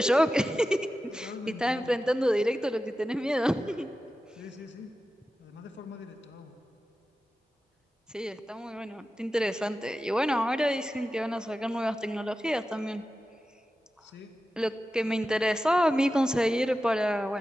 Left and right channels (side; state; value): both; normal; correlation 0.93